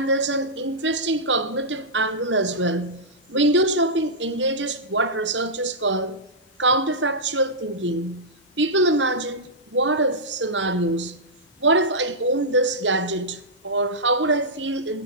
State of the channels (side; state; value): both; normal; correlation -0.12